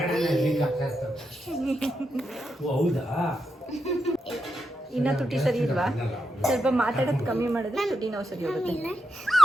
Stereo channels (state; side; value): normal; both; correlation 0.86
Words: ಹೌದಾ? ಇನ್ನ ತುಟಿ ಸರಿ ಇಲ್ವಾ? ಸ್ವಲ್ಪ ಮಾತಾಡೋದು ಕಮ್ಮಿ ಮಾಡಿದ್ರೆ ತುಟಿ ನೋವು ಸರಿ ಹೋಗುತ್ತೆ.